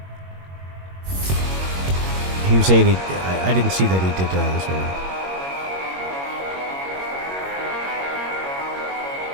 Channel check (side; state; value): left; late; 21 ms